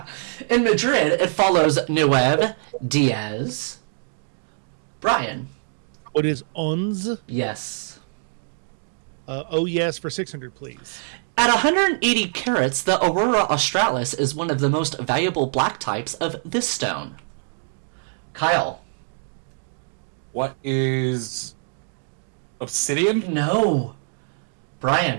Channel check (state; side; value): silent; left; digital silence